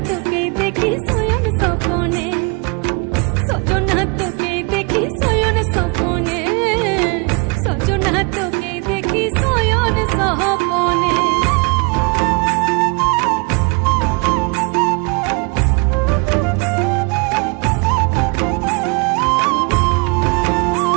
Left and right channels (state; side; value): quieter; left; 31.0 dB